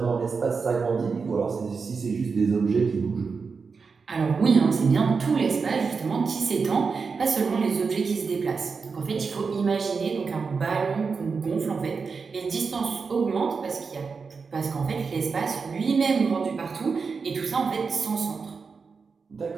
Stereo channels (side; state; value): left; quieter; 5.1 dB